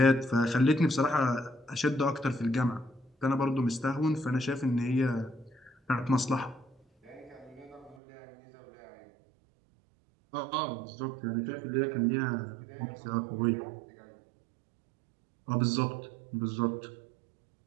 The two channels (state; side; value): drops out; left; at 8.0 s